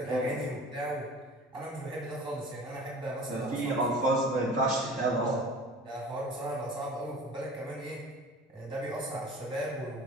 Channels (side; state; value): both; normal; correlation 0.42